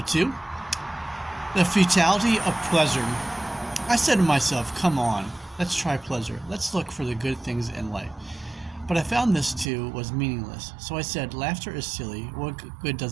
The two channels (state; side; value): drops out; left; at 9.7 s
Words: 2. The futility of pleasure. I said to myself, come on, let's try pleasure. Let's look for the good things in life. But I found this too was meaningless. So I said, laughter is silly. What good